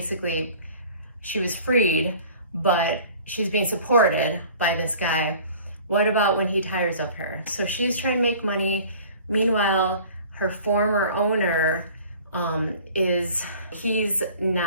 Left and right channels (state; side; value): inverted; both; correlation -0.47